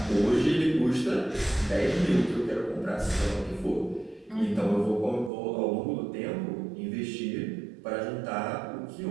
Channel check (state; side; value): drops out; left; at 5.3 s